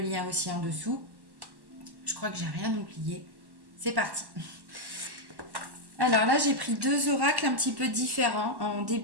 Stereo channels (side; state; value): left; late; 1.1 ms